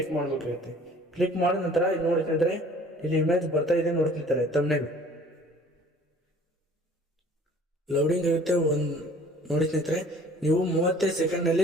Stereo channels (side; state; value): both; normal; correlation 0.52